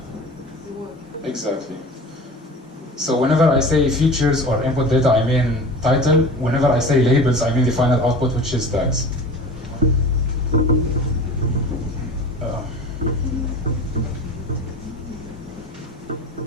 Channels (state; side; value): normal; both; correlation 0.36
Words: the work. Exactly. So whenever I say features or input data, I mean title. Whenever I say labels, I mean the final output, which is tags.